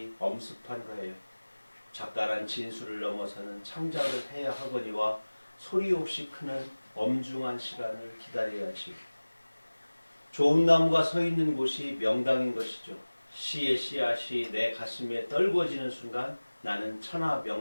엄습한 거예요. 작가란 진수를 넘어서는 창작을 해야 하거니와 소리 없이 크는 엄중한 시간을 기다려야지. 좋은 나무가 서 있는 곳이 명당인 것이죠. 시의 씨앗이 내 가슴에 떨궈지는 순간 나는 천하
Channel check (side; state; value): both; inverted; correlation -1.00